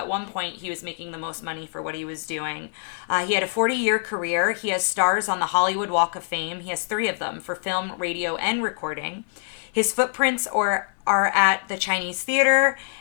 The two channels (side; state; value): right; silent; 62 dB below the other